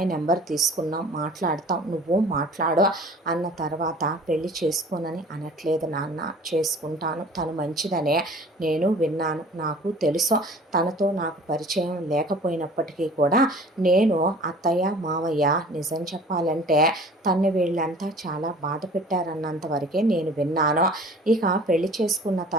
నెంబర్ తీసుకున్నాం, మాట్లాడతాం, నువ్వు మాట్లాడు అన్న తర్వాత పెళ్లి చేసుకోనని అనట్లేదు నాన్న, చేసుకుంటాను. తను మంచిదనే నేను విన్నాను, నాకు తెలుసు. తనతో నాకు పరిచయం లేకపోయినప్పటికీ కూడా నేను అత్తయ్య మావయ్య నిజం చెప్పాలంటే తన్ని వీళ్ళంతా చాలా బాధ పెట్టారన్నంత వరకే నేను విన్నాను. ఇక పెళ్లి చేసుకున్న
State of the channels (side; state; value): both; normal; correlation 0.47